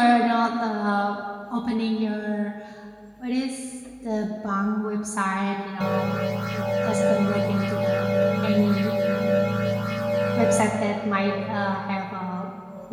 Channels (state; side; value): identical; both; correlation 1.00